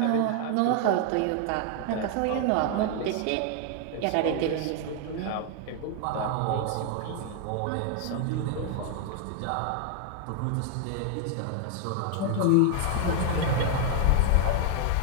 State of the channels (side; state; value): both; different; correlation 0.00